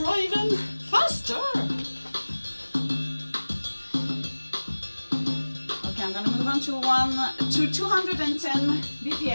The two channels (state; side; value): inverted; both; correlation -1.00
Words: even faster. Okay, I'm gonna move on to 210